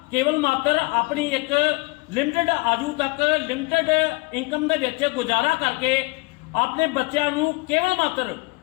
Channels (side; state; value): right; quieter; 25.3 dB